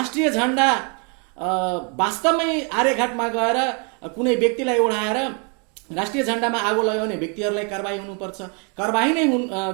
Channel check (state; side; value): quieter; left; 36.1 dB